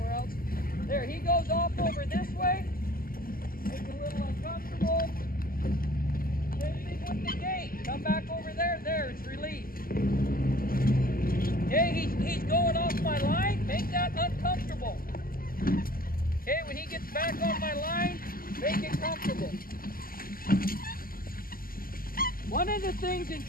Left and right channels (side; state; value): right; late; 0.42 ms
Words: else. There, he goes off over this way, make it a little uncomfortable. Same thing with the gate. Come back over there, there, it's relief. Okay, he's going off my line, make that uncomfortable. Okay, when he gets back on my line, make it comfortable. One of the things in